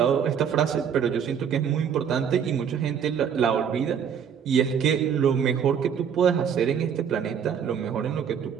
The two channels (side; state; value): left; quieter; 7.8 dB